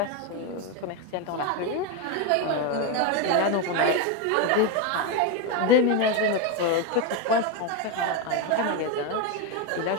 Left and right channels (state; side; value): different; both; correlation 0.03